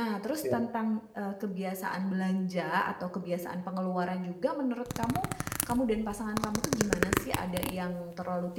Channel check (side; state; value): both; identical; correlation 1.00